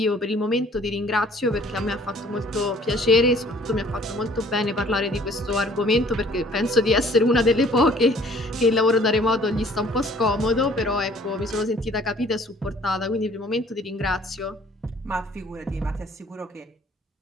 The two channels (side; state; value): both; normal; correlation 0.56